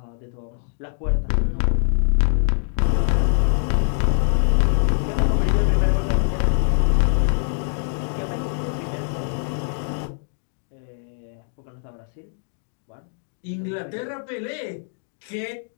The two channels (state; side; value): silent; right; 55 dB below the other